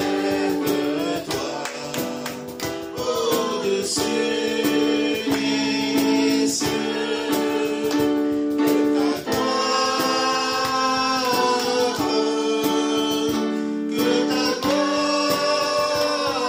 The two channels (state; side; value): identical; both; correlation 1.00